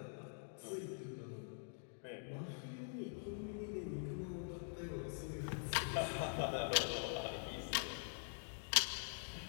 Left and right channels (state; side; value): silent; right; digital silence